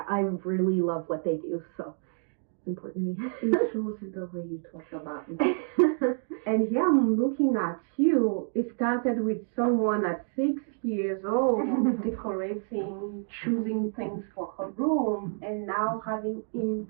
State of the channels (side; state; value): left; silent; 59 dB below the other